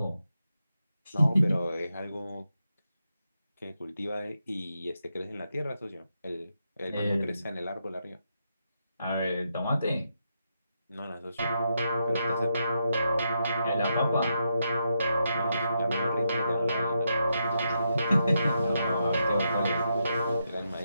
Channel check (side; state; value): both; inverted; correlation -0.82